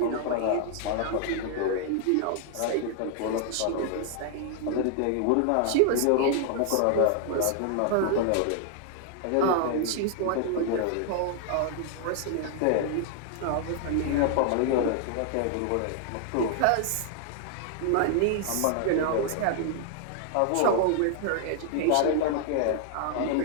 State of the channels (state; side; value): different; both; correlation 0.00